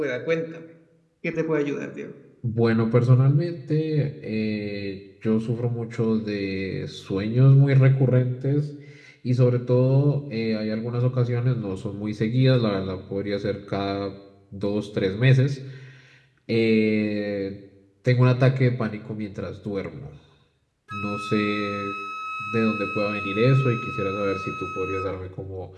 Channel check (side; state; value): both; identical; correlation 1.00